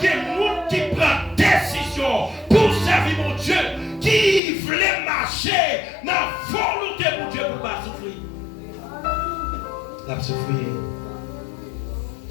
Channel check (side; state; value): right; drops out; at 4.4 s